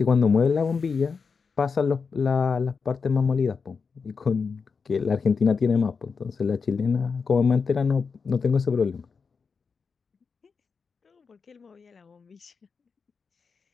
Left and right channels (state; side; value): quieter; right; 5.3 dB